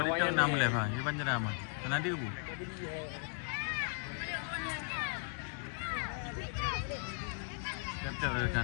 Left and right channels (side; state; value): right; silent; 53 dB below the other